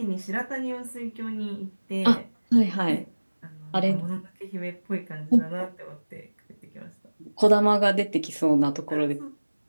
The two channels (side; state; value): both; inverted; correlation -1.00